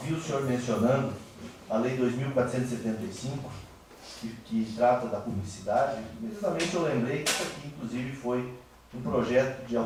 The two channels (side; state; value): both; identical; correlation 1.00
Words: o senhor mencionando a Lei 2.475, que trata da publicidade, imediatamente eu lembrei que isso aqui, inclusive, foi um projeto de